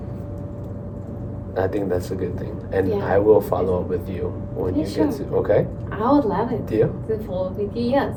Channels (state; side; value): identical; both; correlation 1.00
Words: I think that's a good thing. And Yeah. I will follow up with you when Yeah, you sure. get to, okay? I would love it. Deal? To follow with you, yes.